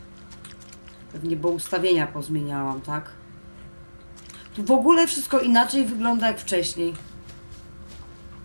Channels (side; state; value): both; inverted; correlation -1.00